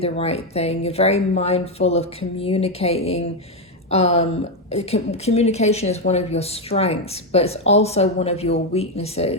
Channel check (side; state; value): both; normal; correlation 0.06